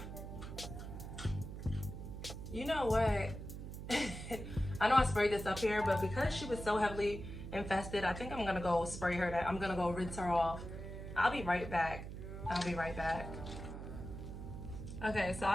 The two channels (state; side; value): noise; right; hum, 9 dB below the sound